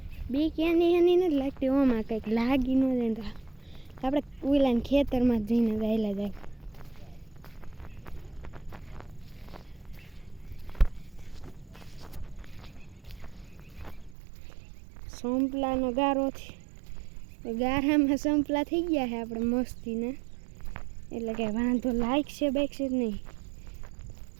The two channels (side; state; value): left; drops out; at 14.2 s